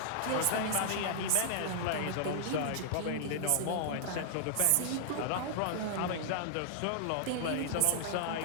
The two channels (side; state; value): both; different; correlation -0.01